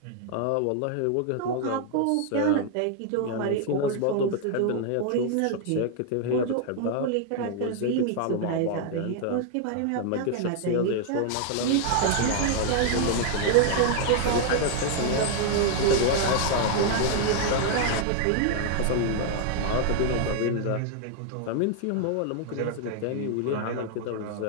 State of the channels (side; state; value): both; different; correlation 0.00